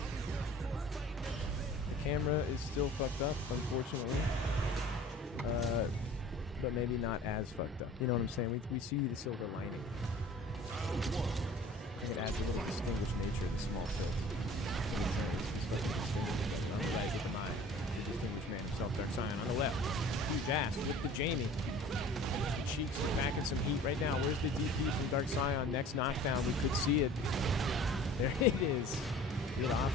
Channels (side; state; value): both; normal; correlation 0.46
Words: The camera is still fucked up, unfortunately. but maybe not as fucked up. You know what I'm saying? We see the silver lining. I think it adds a little distinguished nature to the small tilt. He's fucking distinguished. On the right with the Mai. The distinguished man himself, Dark Scion. On the left, huge ass with the Jamie. The Cheeks are packing some heat right now. Where's the DP from Dark Scion? Next knockdown, we could see it. There it is. Get off